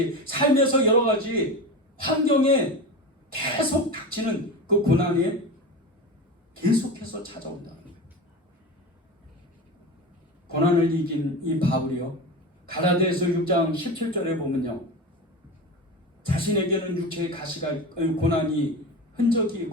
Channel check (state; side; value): normal; both; correlation 0.26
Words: 삶에서 여러 가지 환경에 계속 닥치는 그 고난이 계속해서 찾아온다는 거예요. 고난을 이긴 이 바울이요. 갈라디아서 6장 17절에 보면요. 자신에게는 육체의 가시가 고난의